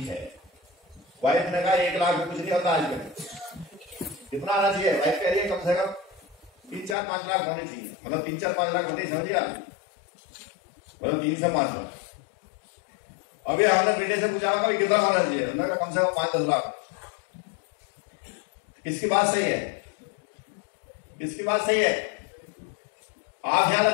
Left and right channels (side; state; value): right; drops out; at 7.0 s